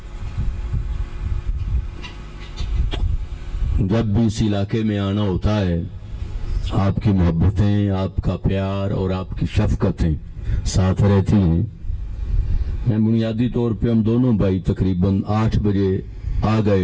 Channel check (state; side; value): identical; both; correlation 1.00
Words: جب بھی اس علاقے میں آنا ہوتا ہے، آپ کی محبتیں، آپ کا پیار اور آپ کی شفقتیں ساتھ رہتی ہیں. میں بنیادی طور پہ ہم دونوں بھائی تقریباً 8 بجے آ